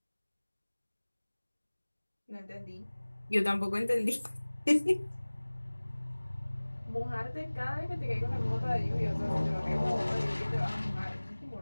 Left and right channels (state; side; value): inverted; both; correlation -1.00